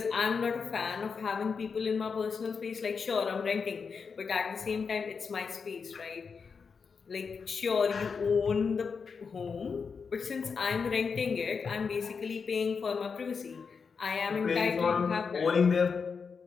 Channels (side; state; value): right; quieter; 5.5 dB